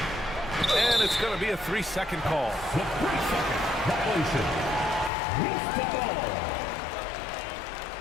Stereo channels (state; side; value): drops out; right; at 5.1 s